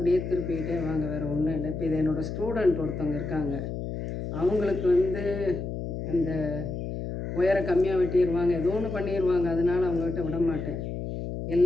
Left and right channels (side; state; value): left; noise; hum, 5 dB below the sound